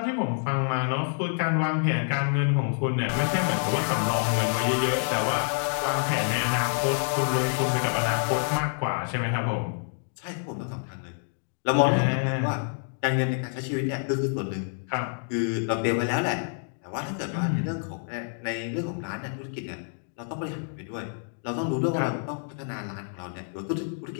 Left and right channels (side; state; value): right; silent; 60 dB below the other